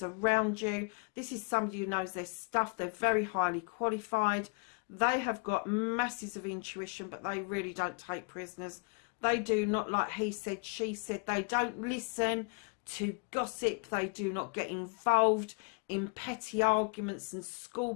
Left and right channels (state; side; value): quieter; right; 36.3 dB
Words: around you, this is somebody who knows their stuff. They're very highly qualified. They have got masses of intuition, but they really don't take prisoners. They do not, like he said, she said, they don't listen to gossip. They do not get involved in petty arguments and